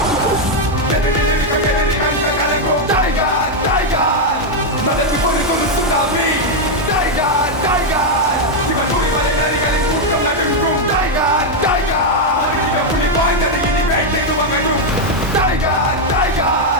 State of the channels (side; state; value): both; normal; correlation 0.01